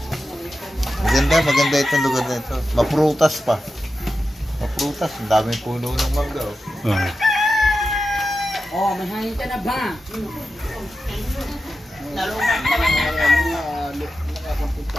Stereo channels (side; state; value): both; normal; correlation 0.91